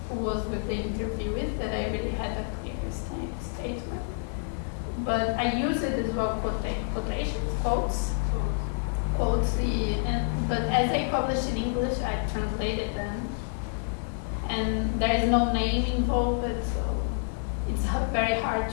was with the interviewees, that I really had a clear statement. But I use it as well, quotations, quotes. But as I published in English, I translated them. and there is no name involved, so it's very hard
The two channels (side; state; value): right; silent; digital silence